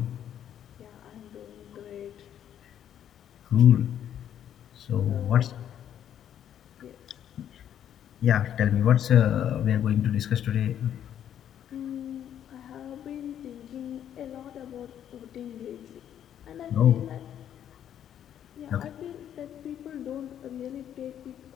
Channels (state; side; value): quieter; right; 10.1 dB